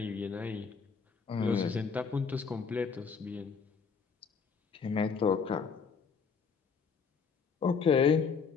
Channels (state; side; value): quieter; right; 5.7 dB